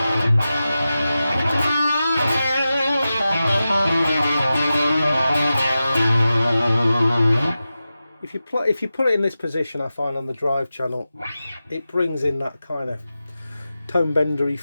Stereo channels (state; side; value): inverted; both; correlation -0.93